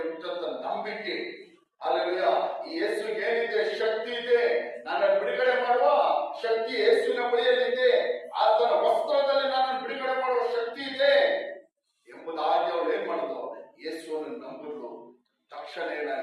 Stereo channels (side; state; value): both; identical; correlation 1.00